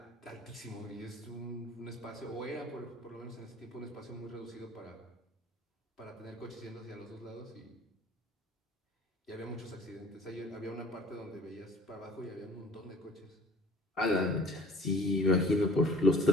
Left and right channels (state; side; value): normal; both; correlation 0.52